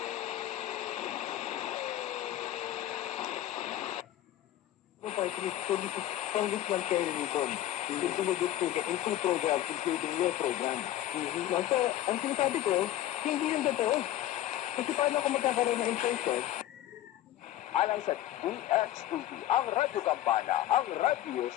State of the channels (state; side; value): quieter; right; 13.4 dB